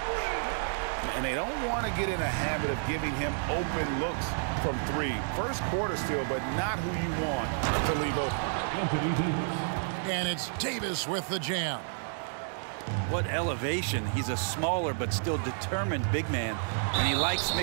And they don't want to get in a habit of giving him open looks from three. First quarter still, but not who you want to leave open. And it's Davis with the jam. What elevation. He's a smaller but still determined big man, and he likes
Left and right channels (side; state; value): left; silent; 58 dB below the other